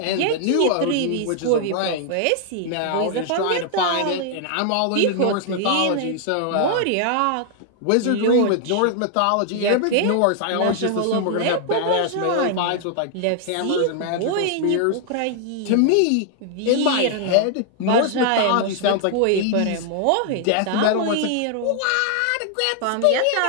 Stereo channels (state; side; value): different; both; correlation 0.00